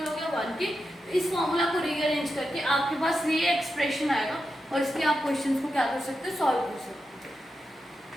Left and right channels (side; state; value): both; normal; correlation 0.88